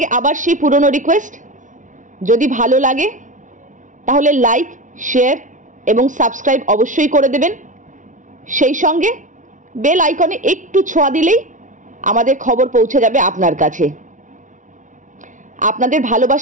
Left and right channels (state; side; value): late; left; 0.37 ms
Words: आबार सेई पुरानो रिक्वेस्ट, यदि भालो लागे ताहले लाइक शेयर एवं सबस्क्राइब अवश्यई करे देबेन। सेई संगे बेल आइकने एकटू छोঁয়া दिलेई आमादेर खबर पौঁছে যাবে আপনার কাছে। আপনাদের